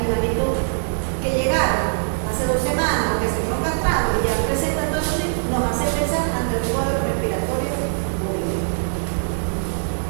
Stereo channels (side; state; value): left; silent; 61 dB below the other